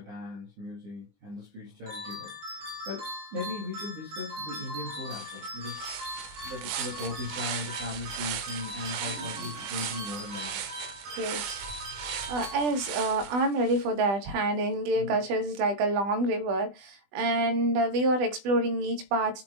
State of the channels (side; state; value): left; late; 20 ms